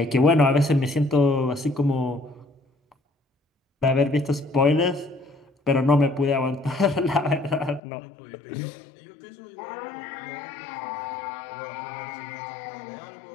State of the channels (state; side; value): drops out; right; at 7.8 s